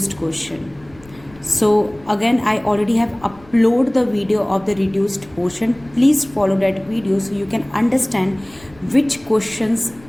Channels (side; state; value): left; noise; rumble, 24 dB below the sound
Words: question. So again, I already have uploaded the video of the reduced portion. Please follow that video so you can understand which questions